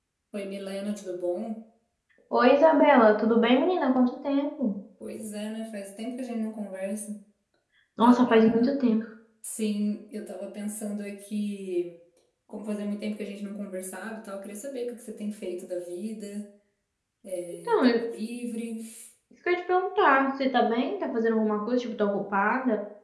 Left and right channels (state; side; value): identical; both; correlation 1.00